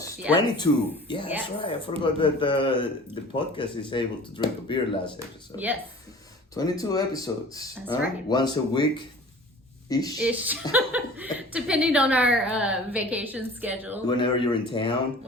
22. Yeah, Yes. that's right. I forgot that the podcast is able to drink a beer last episode. Yes. 22 episodes. That's right. Once a week-ish. Depending on our vacation schedule. Whenever you're in town.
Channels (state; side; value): normal; both; correlation 0.44